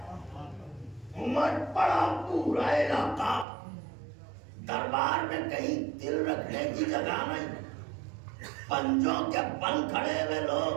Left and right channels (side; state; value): left; drops out; at 3.5 s